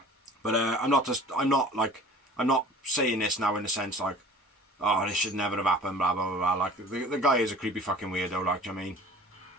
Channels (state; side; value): normal; both; correlation 0.45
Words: But I'm not saying this now in the sense like, oh, this should never have happened, blah blah blah blah. Like the guy is a creepy fucking weirdo. Like, do you know what I mean?